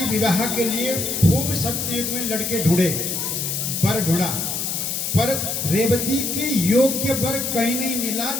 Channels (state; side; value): noise; left; hiss, 2 dB below the sound